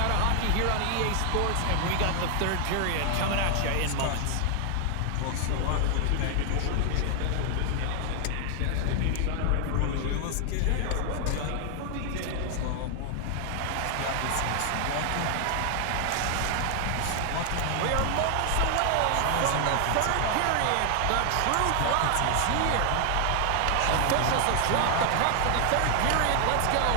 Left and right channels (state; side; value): different; both; correlation 0.00